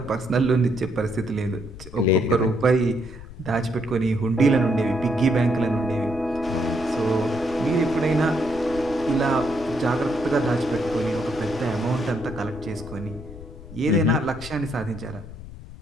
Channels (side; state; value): left; noise; rumble, 14 dB below the sound